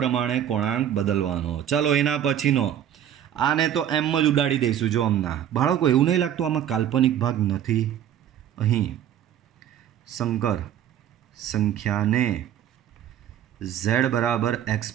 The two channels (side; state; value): left; quieter; 10.4 dB